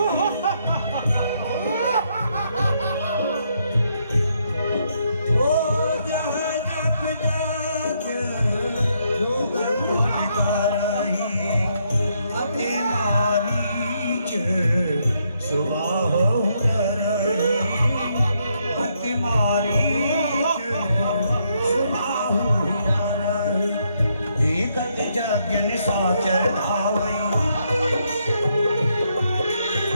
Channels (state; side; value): inverted; both; correlation -0.75